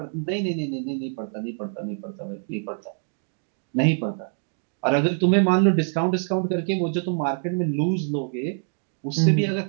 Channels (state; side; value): silent; left; 58 dB below the other